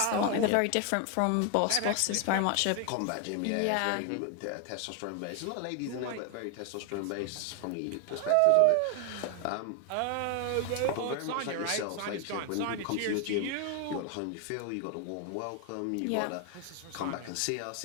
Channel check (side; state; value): both; different; correlation 0.00